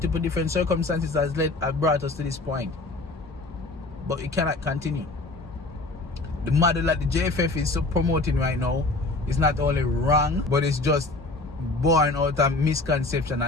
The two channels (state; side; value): quieter; right; 3.1 dB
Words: different circumstances have brought us to this point. But it cannot continue. The model that the JFF is promoting right now is not only wrong, but it's just born out of misconception